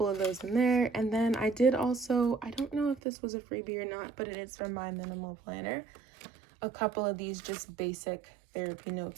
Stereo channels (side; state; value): left; drops out; at 3.0 s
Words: of those in there. And then I did also, I don't know if this was a freebie or not, but it is from MyMinimalPlanner. A couple of these just basic therapy